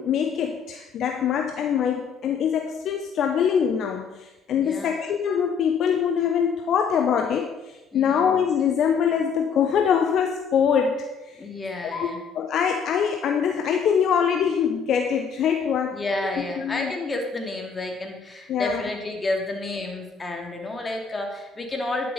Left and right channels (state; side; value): quieter; right; 6.6 dB